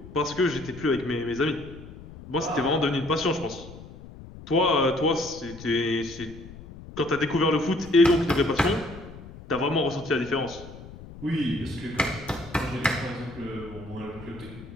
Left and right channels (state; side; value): noise; left; rumble, 16 dB below the sound